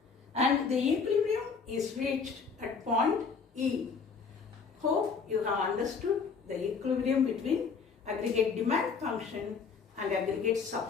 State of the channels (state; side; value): quieter; right; 5.4 dB